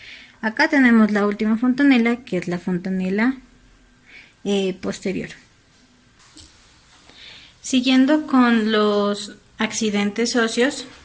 Acá tenemos la última fontanela, que es la fontanela posterior. Siguiendo con los accidentes óseos,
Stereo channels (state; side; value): identical; both; correlation 1.00